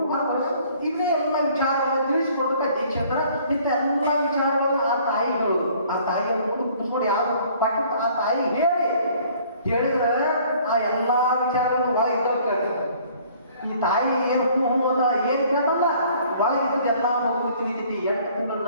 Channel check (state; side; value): inverted; both; correlation -0.57